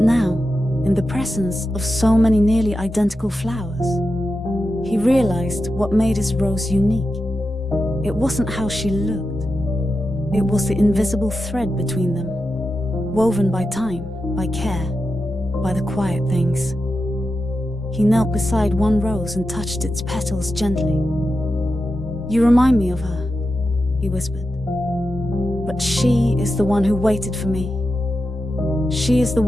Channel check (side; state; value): both; normal; correlation 0.90